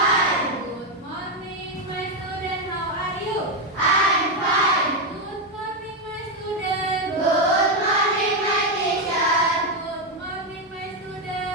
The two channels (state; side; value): normal; both; correlation 0.05